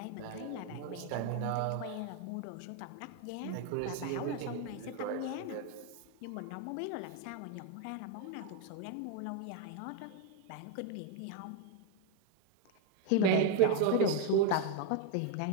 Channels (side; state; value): both; different; correlation 0.01